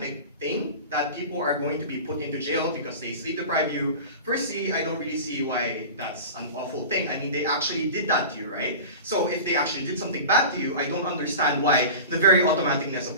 thing, that people are going to be put into jail because they sleep deprive you. Firstly, I don't really see why that's an awful thing. I mean, they actually did that to you, right? So if they actually did something bad to you, I don't understand why the very automaticness of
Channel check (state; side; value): inverted; both; correlation -0.33